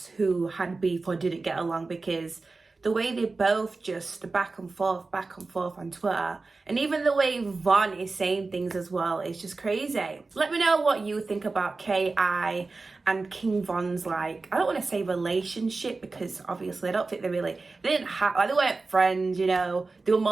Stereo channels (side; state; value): left; quieter; 3.7 dB